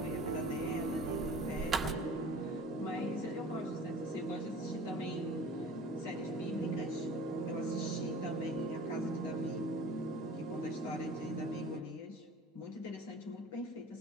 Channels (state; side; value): normal; both; correlation 0.43